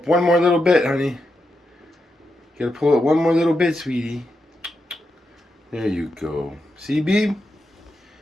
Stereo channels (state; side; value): normal; both; correlation 0.86